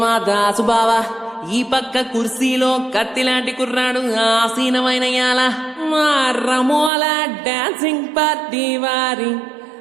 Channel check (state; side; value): drops out; left; at 6.9 s